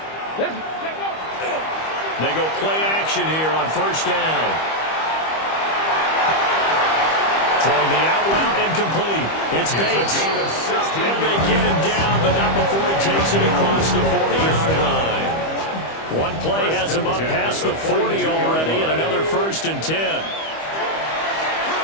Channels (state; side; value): late; right; 25 ms